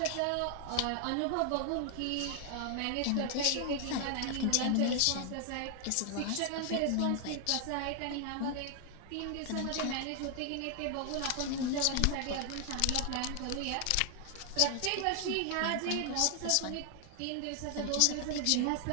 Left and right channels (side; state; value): both; different; correlation 0.00